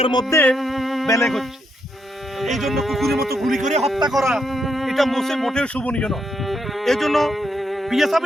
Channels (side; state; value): both; normal; correlation 0.79